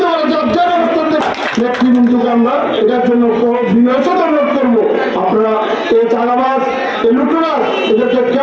করে নেতৃবৃন্দকে আমরা এটার জন্য বিনয়সত অনুরোধ করবো। আপনারা এই চাঁদাবাজ এই লুটতরাজ এদেরকে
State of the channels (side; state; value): both; identical; correlation 1.00